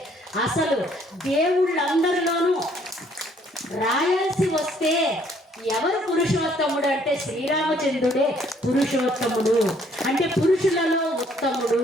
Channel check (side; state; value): both; normal; correlation 0.63